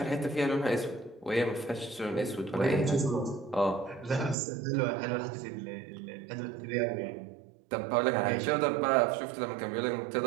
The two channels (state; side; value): drops out; left; at 4.4 s